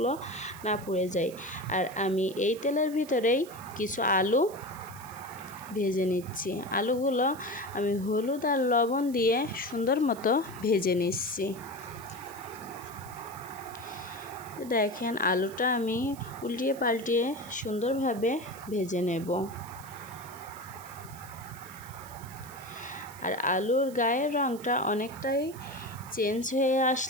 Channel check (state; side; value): noise; right; hiss, 18 dB below the sound